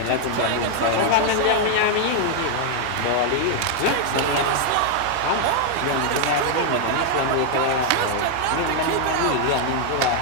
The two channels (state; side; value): different; both; correlation 0.00